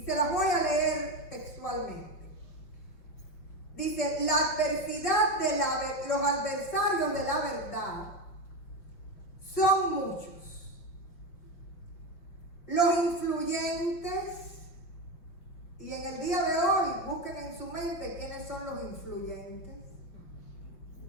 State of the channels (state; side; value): late; right; 5.8 ms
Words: se las voy a leer textualmente. Dice, la adversidad de los adversarios de la verdad son muchos. Los influyentes, y en el día de hoy busquen en su mente quiénes son los influyentes.